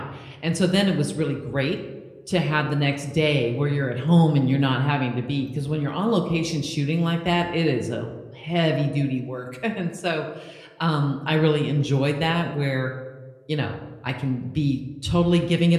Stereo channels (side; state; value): both; identical; correlation 1.00